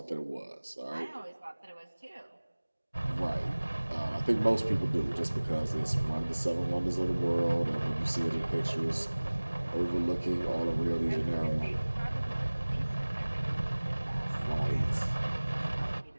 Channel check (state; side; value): inverted; both; correlation -1.00